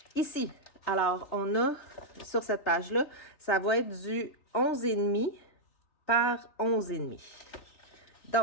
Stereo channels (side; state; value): right; late; 3.6 ms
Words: ici, alors, on a sur cette page-là, ça va être du 11,5 par 11,5.